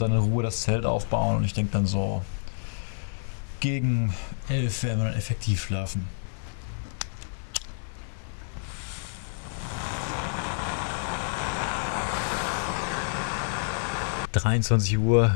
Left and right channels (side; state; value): right; silent; digital silence